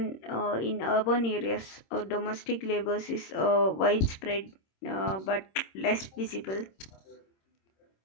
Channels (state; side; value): late; right; 26 ms